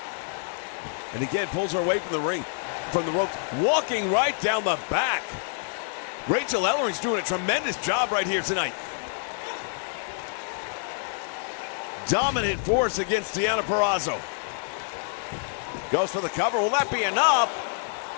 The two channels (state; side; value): silent; right; 60 dB below the other